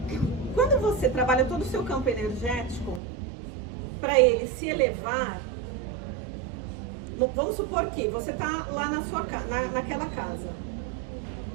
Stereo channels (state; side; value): drops out; left; at 3.0 s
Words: Quando você trabalha todo o seu campo energético, para ele se elevar, vamos supor que você está lá na sua naquela casa.